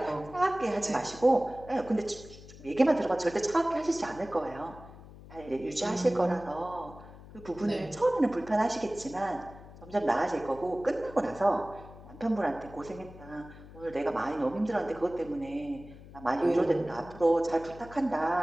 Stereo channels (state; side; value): noise; left; hum, 18 dB below the sound